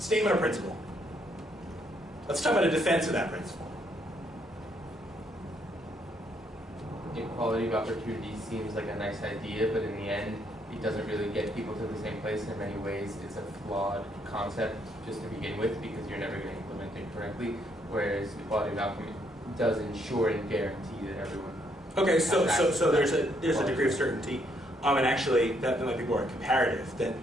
of principle. Let's talk about a defense of that principle. Equality of opportunity seems like a nice idea, but in the end, it doesn't really get people to the same place. In many ways, it's a flawed concept just to begin with because you're never going to implement it correctly. Whereas equality of outcome does ensure and guarantee that everyone. Okay, so there's a degree of certainty, and actually that might be more comparative.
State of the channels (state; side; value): normal; both; correlation 0.72